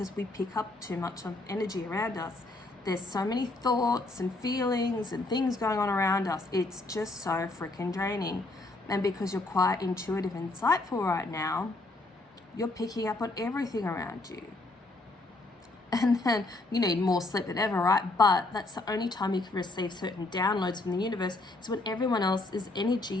we pick up too much of energy around us. There's so many thoughts and feelings and things going on around us. It's just so freaking draining. And because you're quite intuitive and insightful right now, you're picking up on everything around you. And then you need more sleep than ever, right? But that's the only time you can receive certain downloads from the universe, is when everyone else's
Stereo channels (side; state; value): right; quieter; 3.0 dB